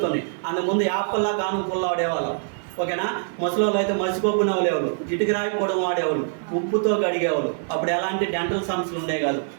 అందుముందు యాప్పల్లా కానుక పుల్ల వాడేవాళ్ళం. ఓకేనా? ముసలోళ్ళు అయితే మసిగొబ్బు నవ్వులేవాళ్ళు, ఇటుక రాయి పొడం వాడేవాళ్ళు, ఉప్పుతో గడిగేవాళ్ళు. అప్పుడు ఎలాంటి డెంటల్ సమస్యలు ఉండే కాదు.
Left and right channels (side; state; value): left; silent; digital silence